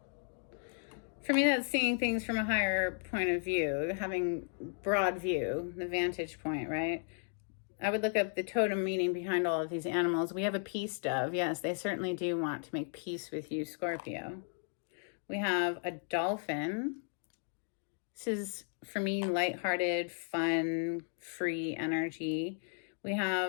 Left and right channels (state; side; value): silent; right; 54 dB below the other